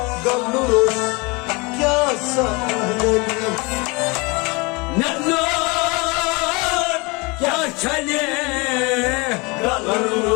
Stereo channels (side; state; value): right; quieter; 27.6 dB